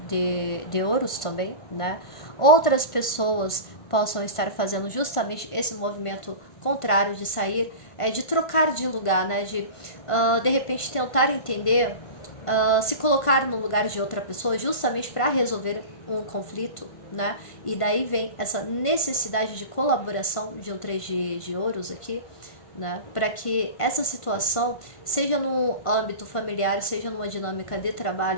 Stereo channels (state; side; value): late; right; 1.5 ms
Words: de ouros também, né? Outras pessoas possam estar fazendo justamente esse movimento contrário de sair, de trocar de lugar, né? De repente tentar entender, se colocar no lugar de outra pessoa justamente para resolver um conflito, né? E daí vem essa necessidade de colaboração de um 3 de ouros aqui, né? Para que essa situação, seja no âmbito familiar, seja numa dinâmica de